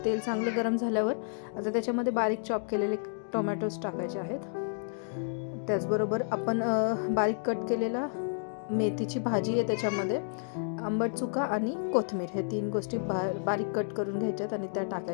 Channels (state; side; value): silent; right; digital silence